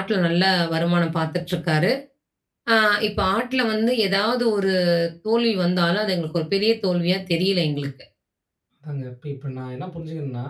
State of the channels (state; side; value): identical; both; correlation 1.00